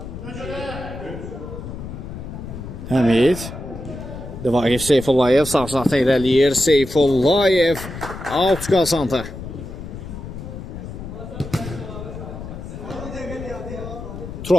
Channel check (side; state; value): left; noise; rumble, 10 dB below the sound